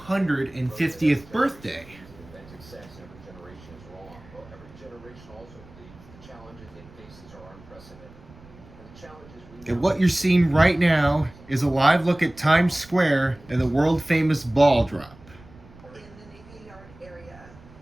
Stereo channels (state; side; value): noise; right; rumble, 22 dB below the sound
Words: birthday. And what you're seeing right now is a live look at Times Square and the world-famous ball drop.